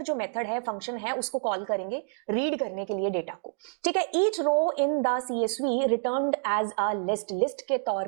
जो मेथड है, फंक्शन है, उसको कॉल करेंगे रीड करने के लिए डेटा को। ठीक है, each row in the CSV returned as a list. List के तौर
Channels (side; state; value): left; silent; digital silence